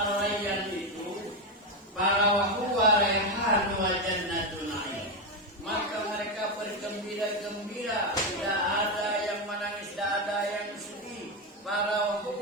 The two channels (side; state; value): both; normal; correlation 0.09